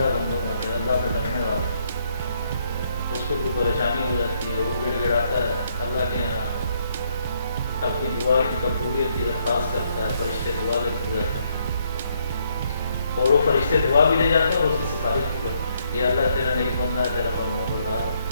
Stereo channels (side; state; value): both; inverted; correlation -0.71